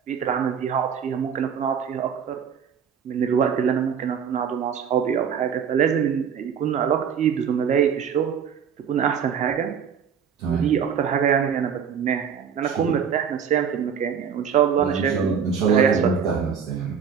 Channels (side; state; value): left; quieter; 7.3 dB